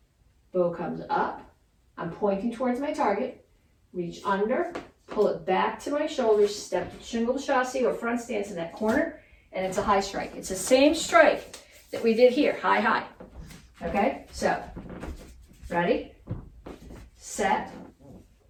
bow comes up, I'm pointing towards my target, reach under, pull it back to my shoulders, step to shingle chassis or front stance in that corner, and it's a high strike. It's the same strike that we did here, high, high. Okay, so, ready, set,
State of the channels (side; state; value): both; identical; correlation 1.00